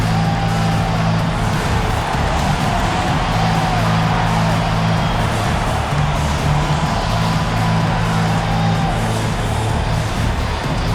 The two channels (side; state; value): both; identical; correlation 1.00